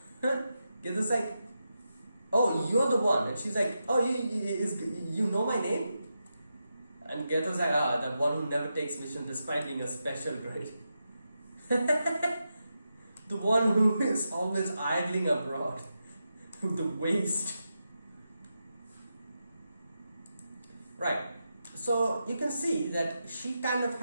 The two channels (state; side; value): inverted; both; correlation -0.88